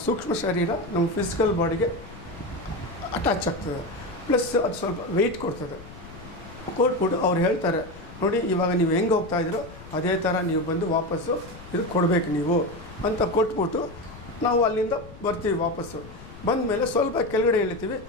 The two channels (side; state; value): left; noise; rumble, 17 dB below the sound